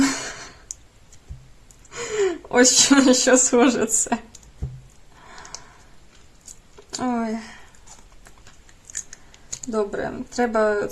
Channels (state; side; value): identical; both; correlation 1.00